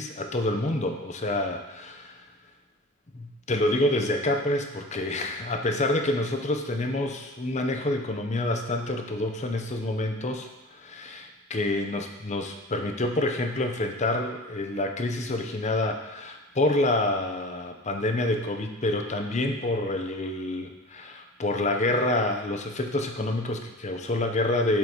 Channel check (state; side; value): normal; both; correlation 0.38